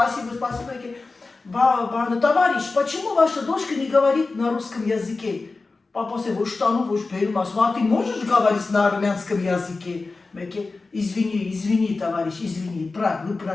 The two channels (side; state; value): right; quieter; 3.8 dB